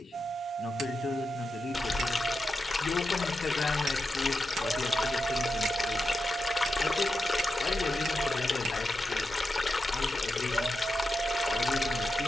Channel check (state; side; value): normal; both; correlation 0.88